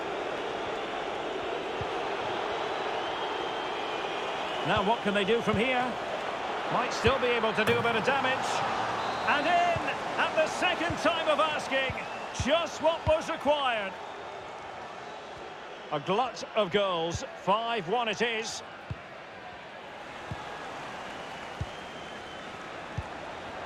Now what can they do from here? Might still be able to do a bit of damage. And in at the second time of asking, just what was required. A glut of goals, 5-1 it is.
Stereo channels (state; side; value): identical; both; correlation 1.00